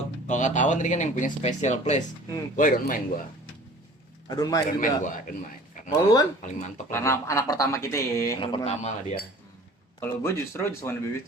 ketahuan tadi kan yang punya special place. Gua don't mind gua. I Don't Mind Don't mind juga. gua, don't mind. Karena Kalau lu, Wan? paling mantep Karena lah. anak pertama kita ya. Anak pertama lah dia. Kalau gue justru Just Wanna Be With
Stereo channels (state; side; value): normal; both; correlation 0.47